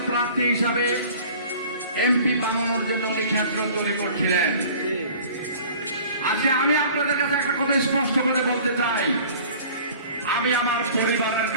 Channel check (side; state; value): both; inverted; correlation -0.47